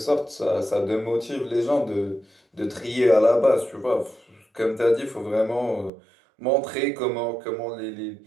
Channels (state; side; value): drops out; left; at 5.9 s